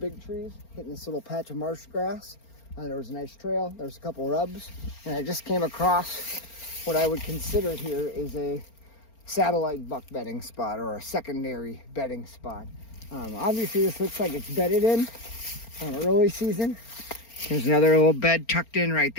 trees, hitting this little patch of marsh grass. There was a nice trail, there's a couple rubs, and I just came across what I would consider here is a satellite buck bedding spot or a secondary bedding spot. Obviously this looks like it's bedded in early season. There's another little bed tucked in right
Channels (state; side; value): late; right; 4.4 ms